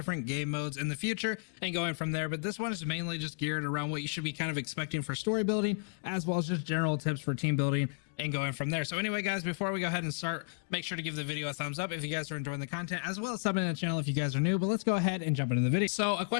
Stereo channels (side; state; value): right; silent; digital silence